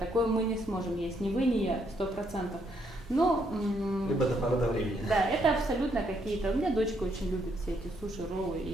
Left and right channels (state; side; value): normal; both; correlation 0.73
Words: мы не сможем есть. Ни вы, ни я, 100%. Но, Либо до поры до времени. да, это абсолютно какие-то. У меня дочка очень любит все эти суши, роллы